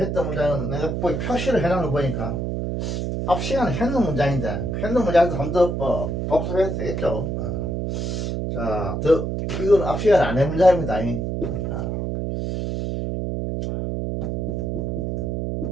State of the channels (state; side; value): noise; right; hum, 2 dB below the sound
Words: 문장은 내가 표시를 해놓은 거 보니까 앞 시간에 했는 문장인데 했는 문장도 한 번 더 복습해도 되겠죠. 자, 이건 앞 시간에 안 한 문장입니다.